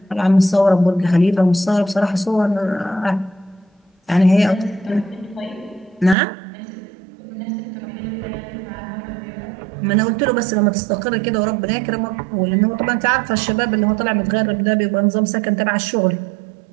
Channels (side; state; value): left; drops out; at 6.2 s